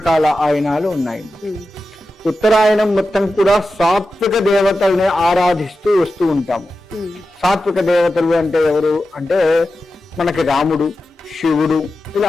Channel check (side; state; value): both; normal; correlation 0.92